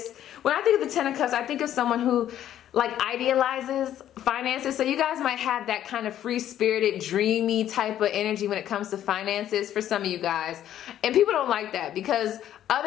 when I think of the 10 of Cups, I think of someone who like idealizes finances. So you guys might have that kind of free-spirited, dreamy type of energy when it comes to finances for some of you guys. And people don't like that because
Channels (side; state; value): right; quieter; 11.4 dB